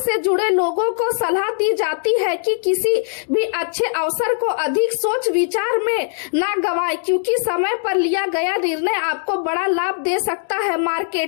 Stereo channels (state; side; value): silent; right; 65 dB below the other